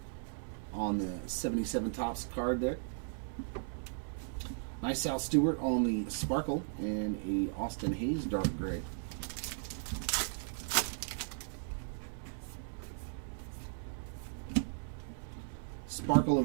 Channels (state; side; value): silent; left; digital silence